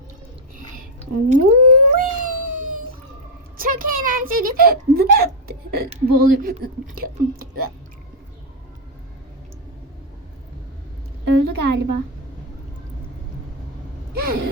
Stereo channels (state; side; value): normal; both; correlation 0.01